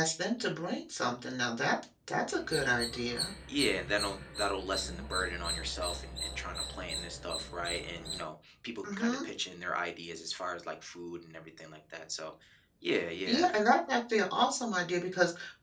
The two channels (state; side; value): identical; both; correlation 1.00